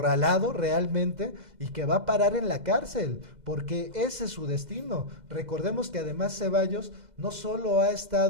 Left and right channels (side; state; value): left; late; 2.0 ms